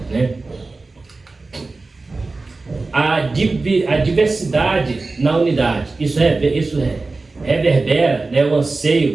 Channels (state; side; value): quieter; left; 3.6 dB